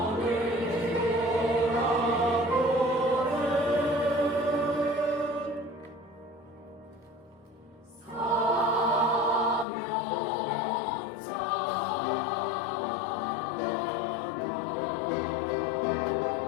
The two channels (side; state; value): right; drops out; at 9.7 s